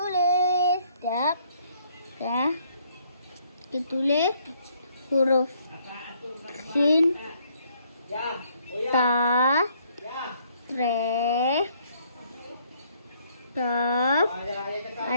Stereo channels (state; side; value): inverted; both; correlation -0.66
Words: Sekejap. Okey. Kita tulis huruf sin, ta, re, kaf,